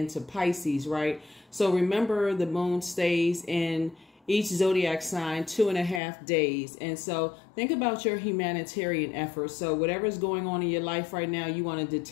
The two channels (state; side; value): drops out; right; at 6.0 s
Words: Pisces, right? So remember, the moon stays in each zodiac sign 2.5 days. And so think about your humanitarian efforts. So whatever's going on in your life right now, you want to